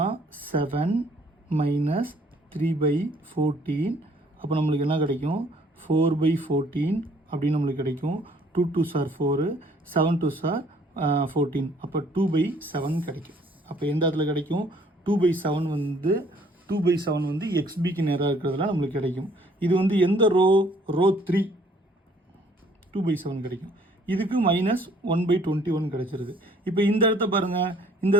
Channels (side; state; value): both; normal; correlation 0.60